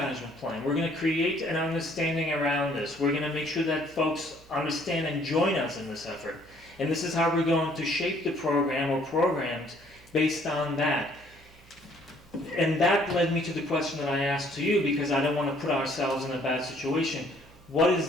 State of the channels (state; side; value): noise; right; hum, 26 dB below the sound